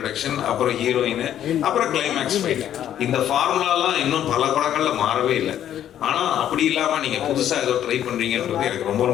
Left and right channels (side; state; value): right; quieter; 10.8 dB